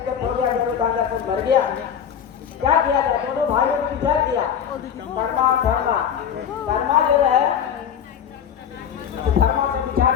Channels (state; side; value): quieter; right; 8.4 dB